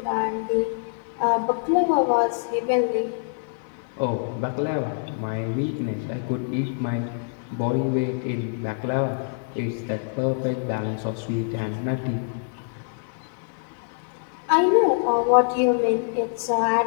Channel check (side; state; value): right; silent; 59 dB below the other